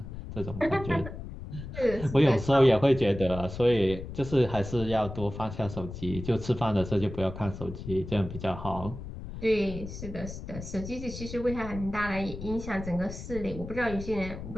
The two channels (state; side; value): noise; left; rumble, 10 dB below the sound